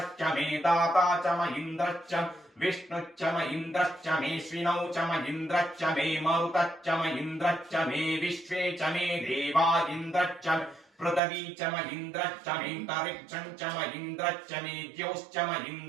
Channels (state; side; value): drops out; left; at 11.2 s